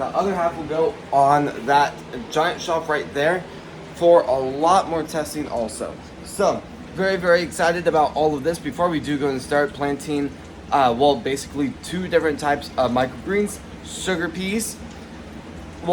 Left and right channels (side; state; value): both; identical; correlation 1.00